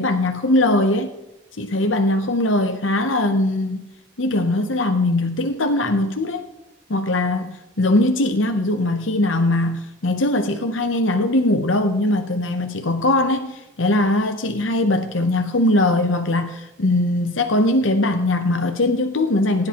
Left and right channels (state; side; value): normal; both; correlation 0.38